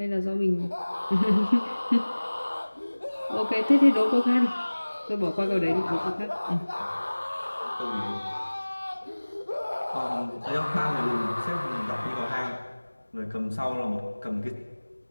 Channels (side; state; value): both; inverted; correlation -1.00